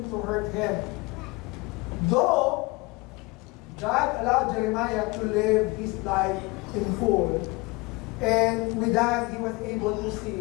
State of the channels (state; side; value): quieter; right; 24.5 dB